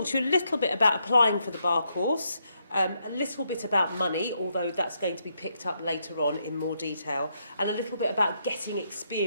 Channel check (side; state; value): both; inverted; correlation -0.78